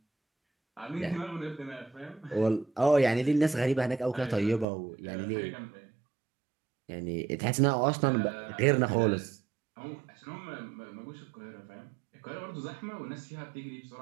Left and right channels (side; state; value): left; drops out; at 4.7 s